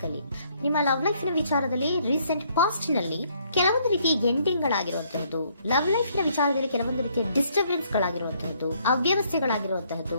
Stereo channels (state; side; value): inverted; both; correlation -0.67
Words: ಅಲ್ಲಿ. ನಿಮ್ಮ ಲವ್ ಲೈಫ್ ನ ವಿಚಾರದಲ್ಲಿ ರೀಸೆಂಟ್ ಪಾಸ್ಟ್ ನಲ್ಲಿ ಕೆಲವೊಂದು ರೀತಿಯ ಎಂಡಿಂಗ್ ಗಳಾಗಿರುವಂತಹದ್ದು, ಲವ್ ಲೈಫ್ ನ ವಿಚಾರದಲ್ಲಿ ಕೆಲವೊಂದು ರೀತಿಯ ಡಿಸ್ಟರ್ಬೆನ್ಸ್ ಗಳಾಗಿರುವಂತಹದ್ದು, ಅವ್ಯವಸ್ಥೆಗಳಾಗಿರುವಂತಹದ್ದು,